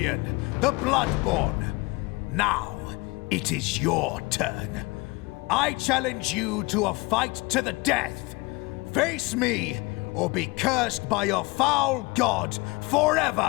the Bloodborne. Now, it is your turn. I challenge you to a fight to the death. Face me, or be cursed by your foul god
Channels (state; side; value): quieter; right; 24.7 dB